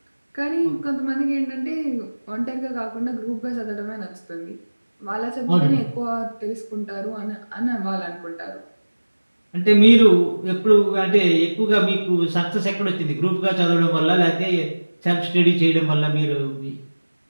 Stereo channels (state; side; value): inverted; both; correlation -1.00